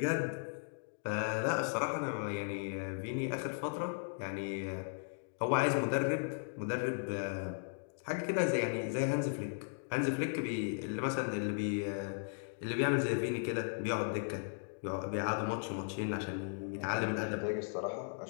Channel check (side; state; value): right; silent; digital silence